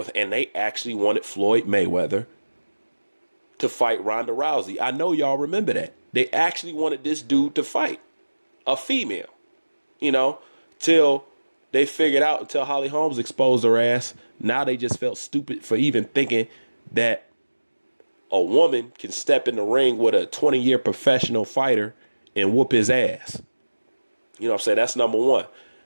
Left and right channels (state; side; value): inverted; both; correlation -1.00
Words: and they actually wanted Floyd Mayweather to fight Ronda Rousey. I know y'all remember that. They actually wanted this dude to fight a female, you know, till they figured out, until Holly Holmes exposed her ass. Now they just felt stupid for even thinking that a woman can step in the ring with a 20-year professional fighter and whoop his ass. You know what I'm saying? That's number one.